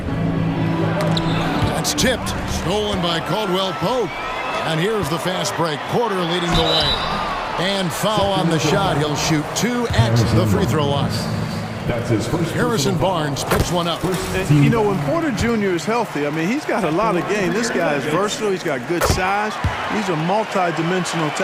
That's tipped, stolen by Caldwell Pope. And here's the fast break. Porter leading the way. And foul on the shot. He'll shoot 2 at the free throw line. That's his first. Harrison Barnes picks one up. And, you know, when Porter Jr. is healthy, I mean, he's got a lot of game. This guy is versatile. He's got good size. He's a multi-dimensional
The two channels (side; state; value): both; identical; correlation 1.00